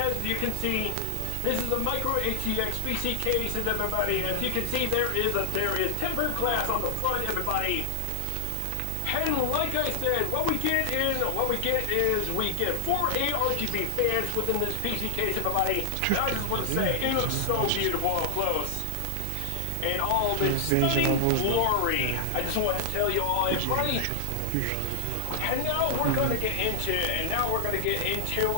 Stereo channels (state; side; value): different; both; correlation 0.00